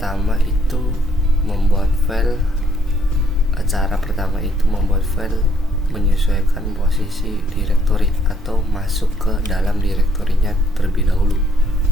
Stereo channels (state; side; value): normal; both; correlation 0.68